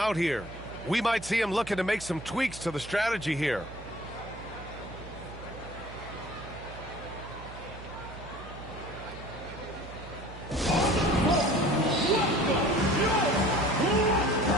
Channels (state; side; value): noise; right; hum, 14 dB below the sound